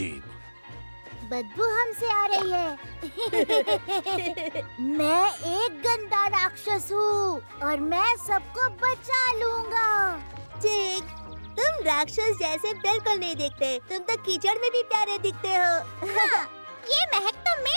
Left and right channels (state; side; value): inverted; both; correlation -1.00